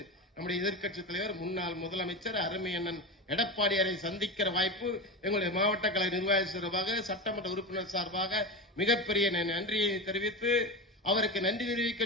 நம்முடைய எதிர்க்கட்சி தலைவர் முன்னாள் முதலமைச்சர் அருமை அண்ணன் எடப்பாடியாரை சந்திக்கிற வாய்ப்பு எங்களுடைய மாவட்ட கழக நிர்வாக சார்பாக சட்டமன்ற உறுப்பினர் சார்பாக மிகப்பெரிய நன்றியை தெரிவித்து அவருக்கு நன்றி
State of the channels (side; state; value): both; normal; correlation 0.21